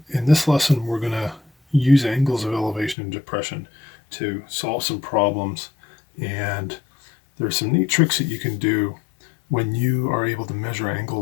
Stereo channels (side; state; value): right; drops out; at 3.0 s